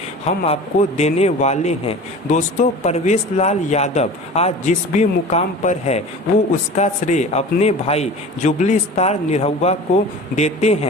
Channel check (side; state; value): both; normal; correlation 0.38